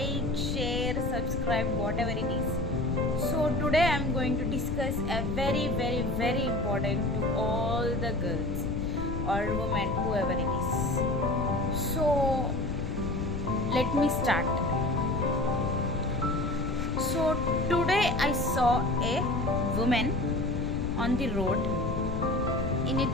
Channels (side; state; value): left; noise; rumble, 3 dB below the sound